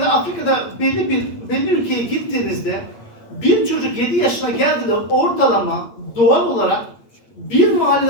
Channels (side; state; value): right; late; 8.7 ms